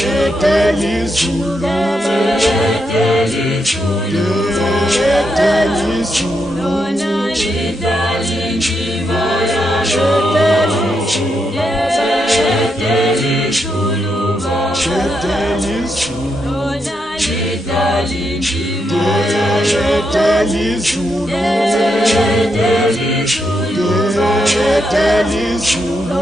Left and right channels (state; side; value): normal; both; correlation 0.82